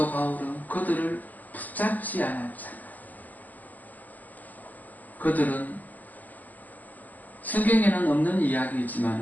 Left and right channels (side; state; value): right; late; 0.082 ms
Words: 바울은 그들을 붙잡지 않았잖아요. 그들은 성경에는 없는